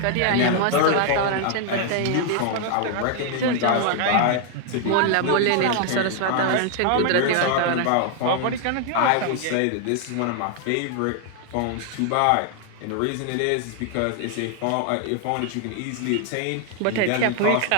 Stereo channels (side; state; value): both; different; correlation 0.00